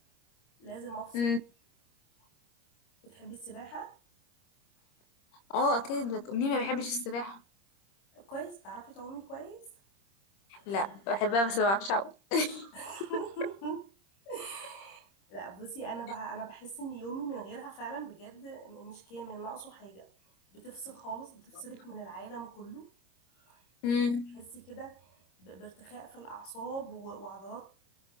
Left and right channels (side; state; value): right; late; 26 ms